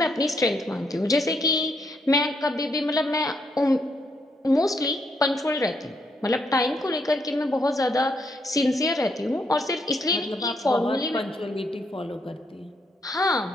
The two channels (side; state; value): both; normal; correlation 0.76